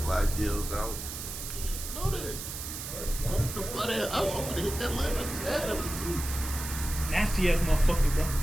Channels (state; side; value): noise; right; hiss, 8 dB below the sound